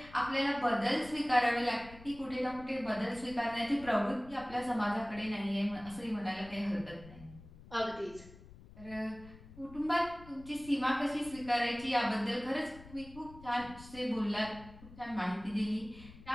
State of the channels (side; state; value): left; noise; rumble, 18 dB below the sound